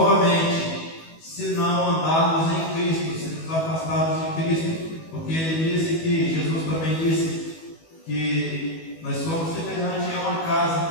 se não andarmos em Cristo, se nos afastarmos de Cristo, porque ele disse que, Jesus também disse, que nós somos semelhantes a uma casa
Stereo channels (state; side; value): late; right; 19 ms